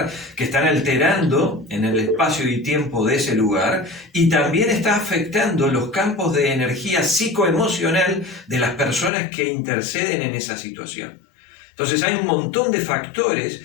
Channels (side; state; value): right; drops out; at 9.1 s